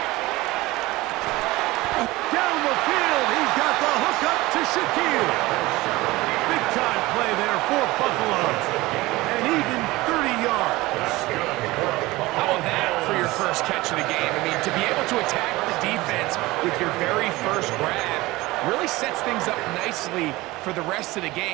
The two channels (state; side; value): quieter; left; 19.9 dB